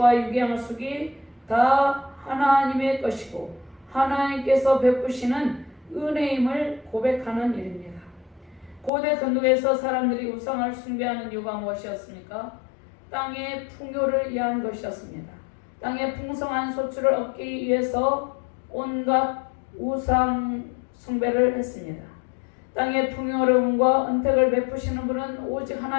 육의 양식이 다 하나님의 것이고 하나님께서 베푸시는 은혜임을 고백하는 일입니다. 고대 근동에서 사람들이 우상을 숭배하는 이유가 무엇이었습니까? 땅의 풍요를 위한 것이었습니다. 땅의 풍성한 소출을 얻기 위해서 온갖 우상 숭배를 했습니다. 땅의 풍요로움과 은택을 베푸시는 분은 오직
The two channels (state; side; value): drops out; right; at 8.9 s